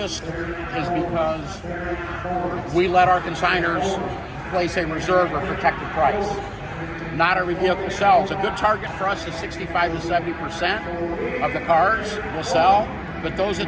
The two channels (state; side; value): identical; both; correlation 1.00